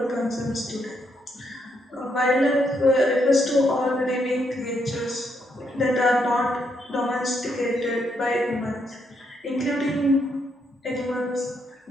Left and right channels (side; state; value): both; normal; correlation 0.77